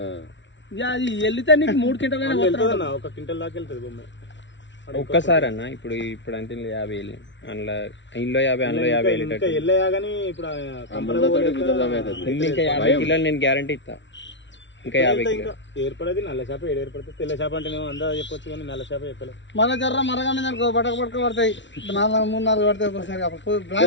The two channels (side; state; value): right; late; 0.53 ms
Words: అది వెళ్తే నీకు 3 క్వింటల్ ఒక క్వింటల్ దాకా వెళ్తుంది బొమ్మ ఒక్కసారి అన్న ఇప్పుడు అంటే 50 అందులో ఇంట్లో 50 అందులో 50 వెళ్ళగాని ఇప్పుడు ఇంకా 50 కిలోలు నేను గ్యారంటీ ఇస్తా ఇంకా 50 కిలో ఏర్పడేది నల్ల చేప ఏర్పడుతుంది తెల్ల చేప అంటే అందా చెప్పొచ్చు కానీ నల్ల చేప చెప్పలేదు మళ్ళీ జర్ర మరగానే పడక పడతాయి 3-4 పడతాయి